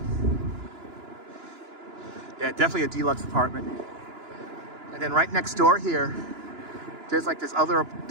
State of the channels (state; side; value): late; left; 2.9 ms